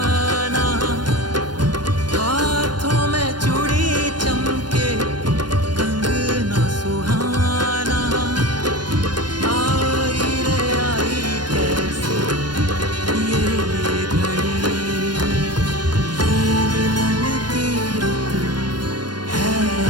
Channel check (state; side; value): late; left; 0.71 ms